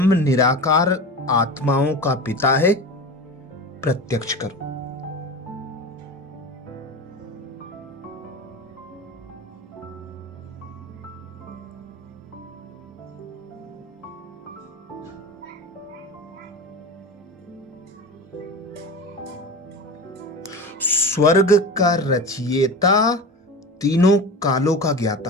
निराकार आत्माओं का पिता है, प्रत्यक्ष करो। स्वर्ग का रचयिता, तीनों कालों का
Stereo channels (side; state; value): both; normal; correlation 0.30